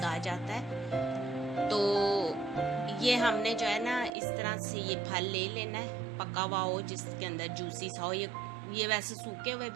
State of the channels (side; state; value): left; drops out; at 4.1 s